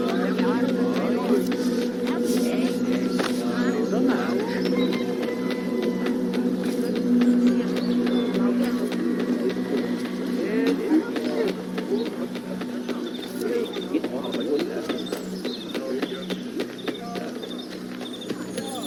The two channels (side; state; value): both; identical; correlation 1.00